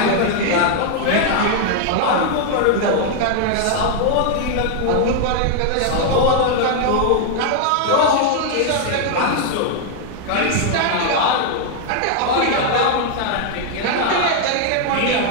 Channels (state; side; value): different; both; correlation 0.00